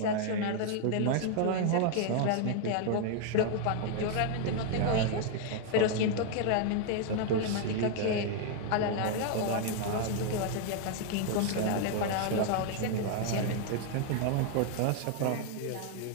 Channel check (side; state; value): both; different; correlation 0.00